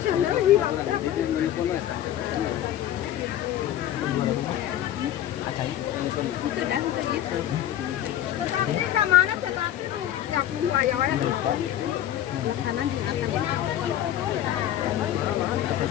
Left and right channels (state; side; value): quieter; right; 12.0 dB